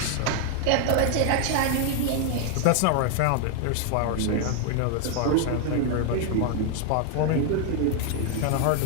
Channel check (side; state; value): both; different; correlation 0.00